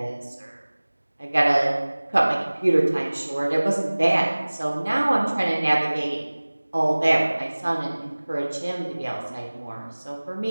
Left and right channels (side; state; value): both; inverted; correlation -1.00